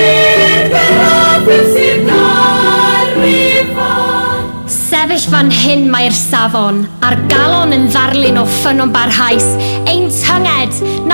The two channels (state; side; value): inverted; both; correlation -1.00